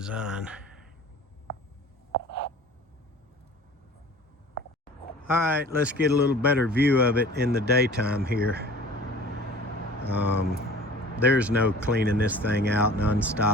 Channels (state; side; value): normal; both; correlation 0.45